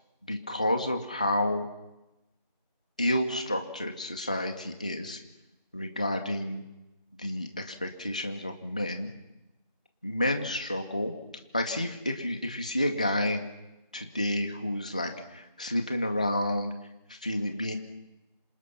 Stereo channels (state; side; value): inverted; both; correlation -0.76